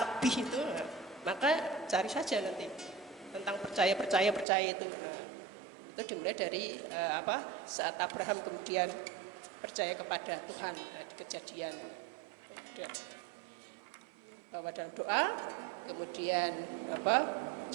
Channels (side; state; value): left; drops out; at 4.5 s